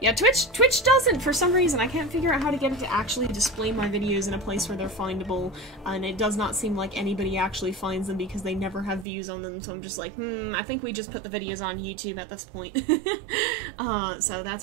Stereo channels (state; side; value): drops out; left; at 9.1 s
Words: Twitch doesn't, for some reason. I can't figure out how to get it to actually display my videos in a place where they're findable, and it does not seem like anybody actually finds them because they never have views on them, so I'm just like, I think we just put the videos on YouTube at this point. So